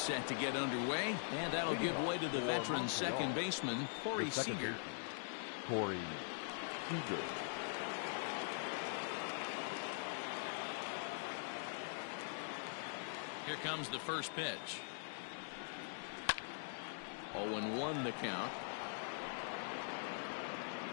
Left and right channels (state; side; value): silent; right; digital silence